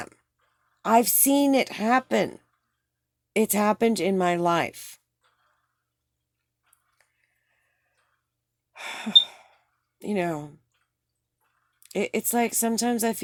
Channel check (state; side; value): identical; both; correlation 1.00